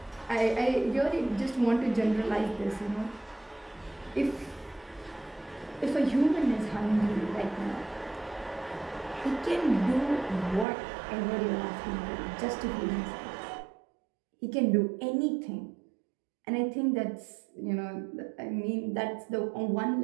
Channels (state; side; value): drops out; left; at 10.7 s